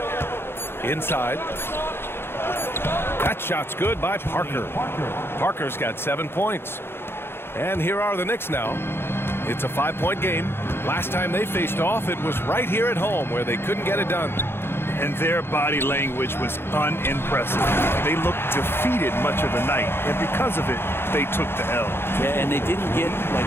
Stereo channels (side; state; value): right; late; 0.11 ms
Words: Inside. That shot's good by Parker. Parker's got 7 points. And here are the Knicks now. It's a 5-point game. Last time they faced off, it was right here at home where they couldn't get it done. And their body language was unimpressive. They looked defeated much of the night, and because of it, they took the L. Yeah, and they didn't get